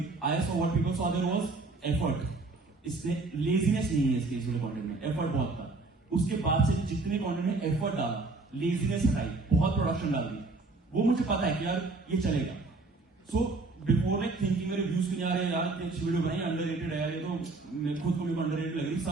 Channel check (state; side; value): quieter; left; 3.5 dB